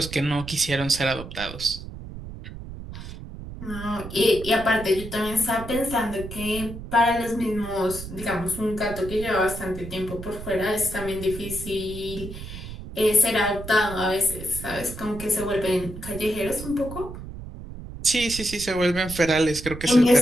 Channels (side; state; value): right; noise; rumble, 11 dB below the sound